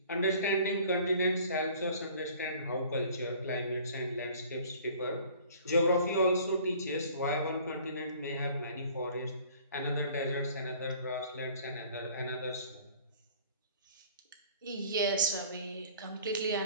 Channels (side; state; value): both; inverted; correlation -0.51